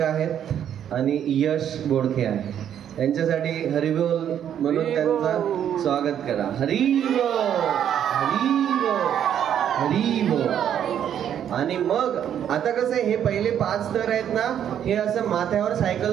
आहेत आणि यश बोडखे आहे. त्यांच्यासाठी हरिबोल म्हणून त्यांचा स्वागत करा. हरिबोल, हरिबोल, हरिबोल. आणि मग आता कसं आहे, हे पहिले 5 स्तर आहेत ना, हे असं माथ्यावर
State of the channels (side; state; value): left; quieter; 9.6 dB